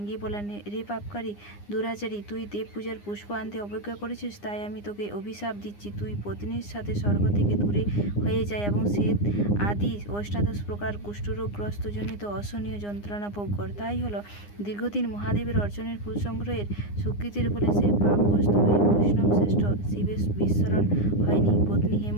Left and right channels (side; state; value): right; late; 9.8 ms